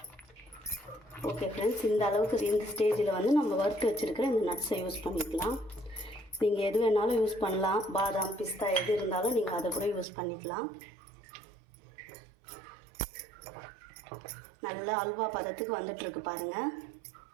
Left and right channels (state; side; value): drops out; left; at 10.1 s